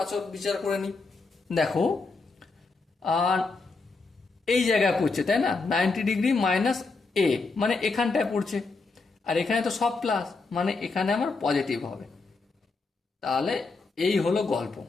আচর বিচার করে নিই। দেখো, আর এই জায়গায় পড়ছে, তাই না? 90 ডিগ্রি মাইনাস এ মানে এখানটায় পড়ছে, আর এখানে তো সব প্লাস, মানে এখানে আমার পজিটিভ হবে। তাহলে এই হলো গল্প।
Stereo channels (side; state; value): right; quieter; 4.0 dB